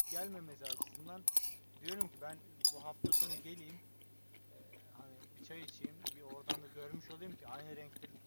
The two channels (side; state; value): both; inverted; correlation -1.00